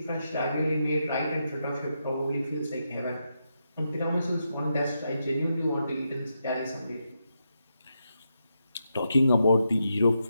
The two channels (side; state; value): both; inverted; correlation -0.84